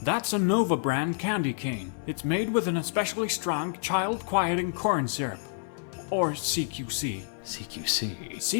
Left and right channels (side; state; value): right; silent; digital silence